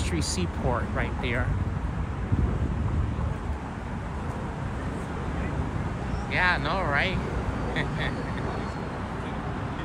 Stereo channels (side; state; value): both; identical; correlation 1.00